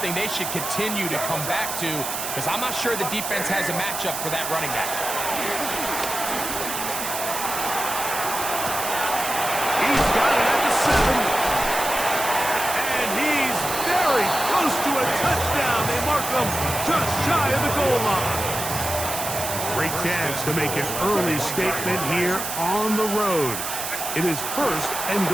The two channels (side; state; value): right; noise; hiss, 5 dB below the sound